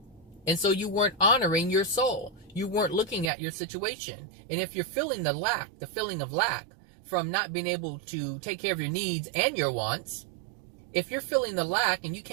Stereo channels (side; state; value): left; drops out; at 3.3 s